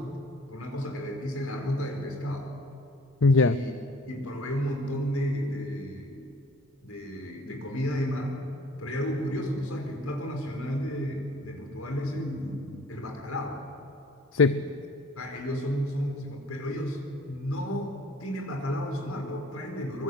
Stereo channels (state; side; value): normal; both; correlation 0.52